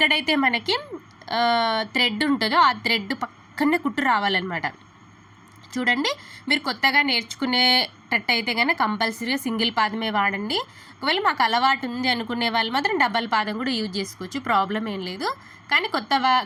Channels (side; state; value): both; identical; correlation 1.00